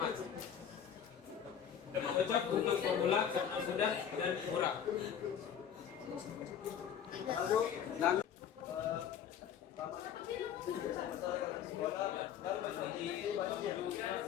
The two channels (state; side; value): quieter; right; 8.8 dB